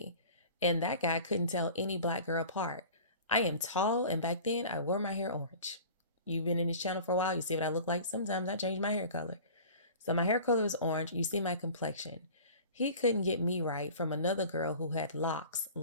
And that guy couldn't tell any black girl apart. I am tall, and back then I wore my hair orange. You've been in this channel for a while. You see what I look like. Sometimes I change my hair color. So my hair color is orange. You see my complexion. He couldn't get me right from another girl who had locks,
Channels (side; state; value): both; inverted; correlation -0.41